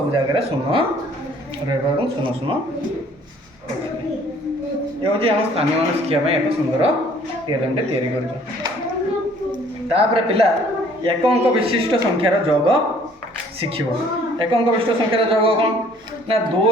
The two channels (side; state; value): both; normal; correlation 0.57